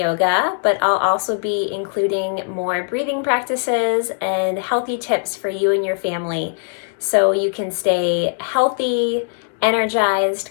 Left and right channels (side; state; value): right; silent; digital silence